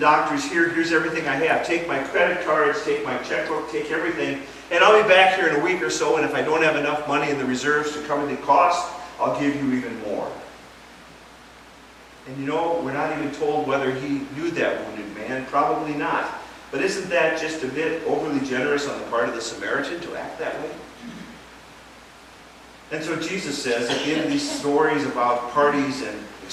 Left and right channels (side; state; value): both; identical; correlation 1.00